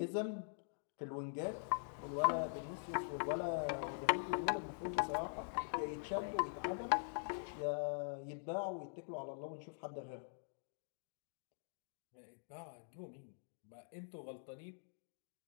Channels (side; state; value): right; silent; digital silence